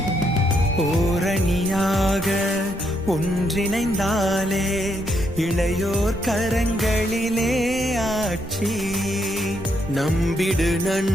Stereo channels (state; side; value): noise; right; rumble, 16 dB below the sound